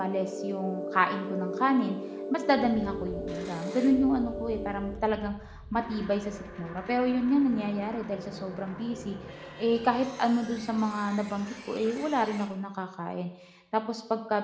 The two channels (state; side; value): identical; both; correlation 1.00